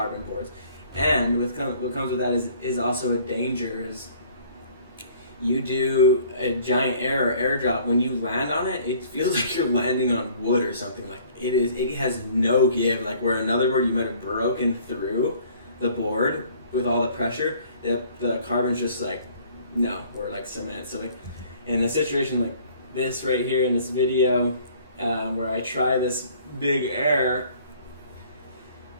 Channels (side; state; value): both; inverted; correlation -0.55